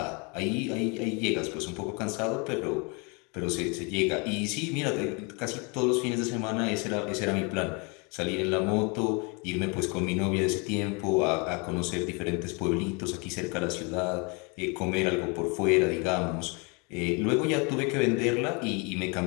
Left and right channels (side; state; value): right; quieter; 31.7 dB